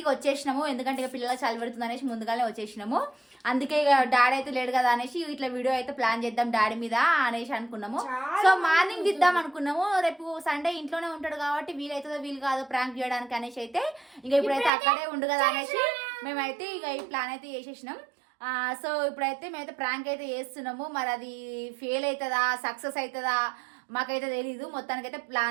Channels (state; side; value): drops out; left; at 14.7 s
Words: ఇక వచ్చేసినాము, ఎందుకంటే ఇక పిల్లలు చలి పెడుతుంది అనేసి ముందుగానే వచ్చేసినాము. అందుకే ఇక డాడీ అయితే లేడు కదా అనేసి ఇట్లా వీడియో అయితే ప్లాన్ చేద్దాం డాడీ మీద అనేసి అనుకున్నాము. సో మార్నింగ్ దిద్దాం అనుకున్నాము, రేపు సండే ఇంట్లోనే ఉంటాడు కాబట్టి వీలైతుందో వీలు కాదో ప్రాంక్ చేయడానికి అనేసి అయితే ఇక ఇప్పుడైతే అక్కడే ఉండు కదా అనేసి మేమైతే ఇక ఈ ప్లాన్ అయితే చేసేసినాం. సో ఇప్పుడైతే మేమైతే ప్రాంక్ అయితే చేస్తున్నాము. మరి అది ఫెయిల్ అవుతుందా సక్సెస్ అవుతుందా మాకైతే తెలీదు. మొత్తానికైతే